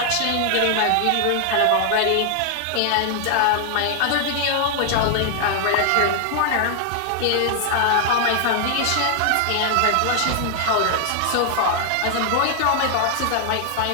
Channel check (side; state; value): both; different; correlation 0.00